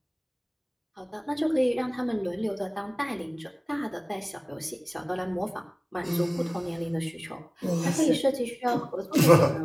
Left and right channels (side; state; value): both; identical; correlation 1.00